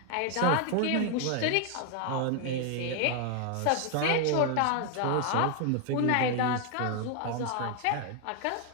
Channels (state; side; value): different; both; correlation 0.00